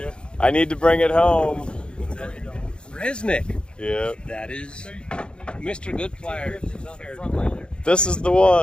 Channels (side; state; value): right; late; 0.053 ms